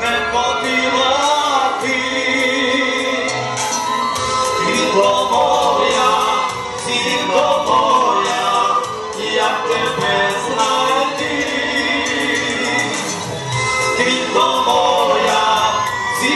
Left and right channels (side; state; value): both; identical; correlation 1.00